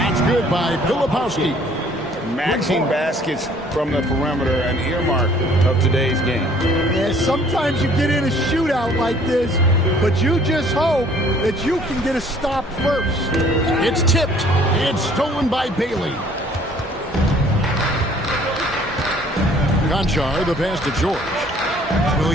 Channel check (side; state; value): both; normal; correlation 0.57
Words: good by Filipowski. Matching baskets from the perimeter, an earmark of today's game. Yeah, sometimes you get in a shootout like this, but you just hope that you can get a stop first. It's tipped. It's stolen by Bailey. Konchar, the pass to George.